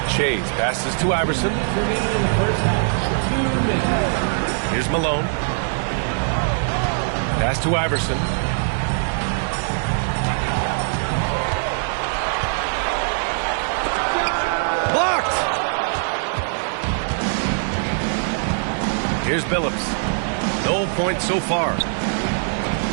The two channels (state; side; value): silent; left; 56 dB below the other